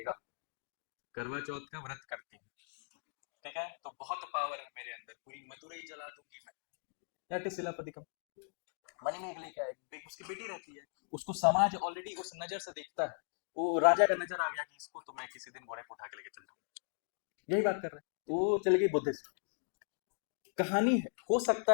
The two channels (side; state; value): right; silent; digital silence